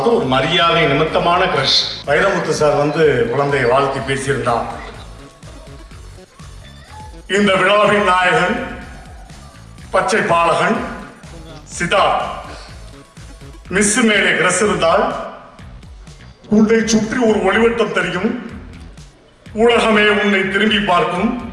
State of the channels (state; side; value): identical; both; correlation 1.00